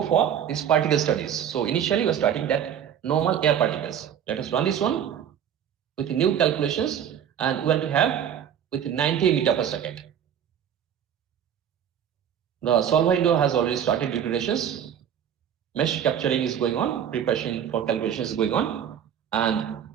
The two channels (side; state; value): left; quieter; 9.1 dB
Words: for these particle studies. So initially, we're starting that normal air particles. Let us run this one with new calculations, and we want to have with 90 meter per second. The solver window has already started iterations. Mesh capturing is going on, preparation for calculations is going on, and